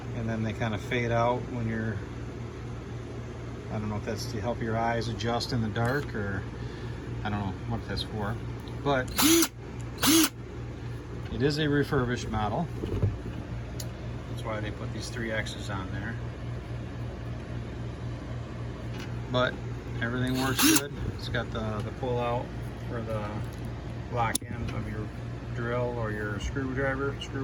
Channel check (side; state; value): both; identical; correlation 1.00